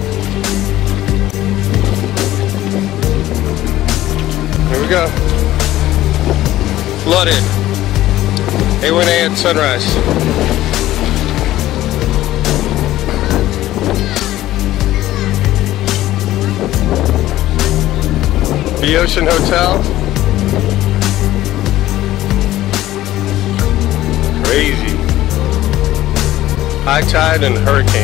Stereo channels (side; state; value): right; quieter; 14.8 dB